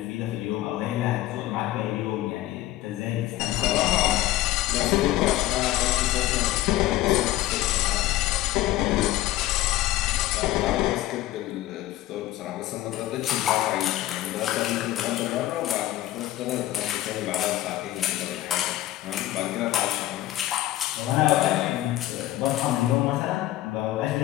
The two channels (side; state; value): right; quieter; 15.2 dB